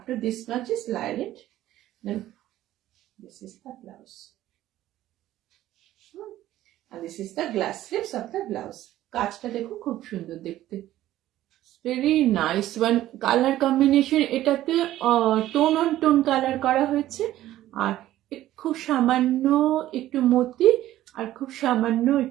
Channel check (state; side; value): quieter; left; 14.1 dB